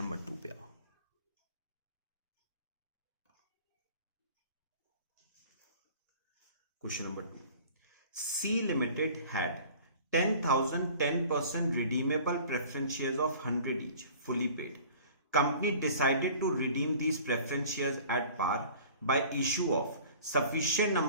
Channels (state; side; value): inverted; both; correlation -0.47